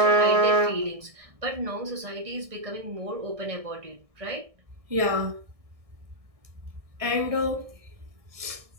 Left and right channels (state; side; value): late; left; 1.6 ms